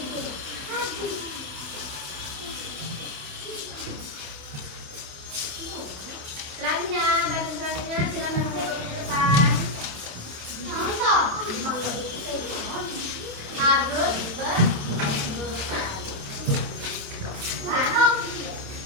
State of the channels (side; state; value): left; late; 28 ms